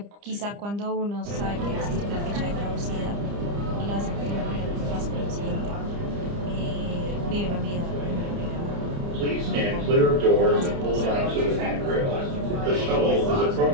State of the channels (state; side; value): late; left; 30 ms